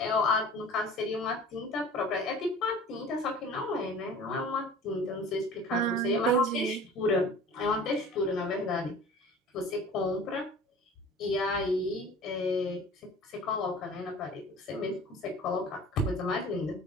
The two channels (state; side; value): normal; both; correlation 0.43